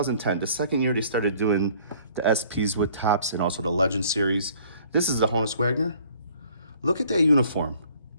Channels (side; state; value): both; inverted; correlation -0.56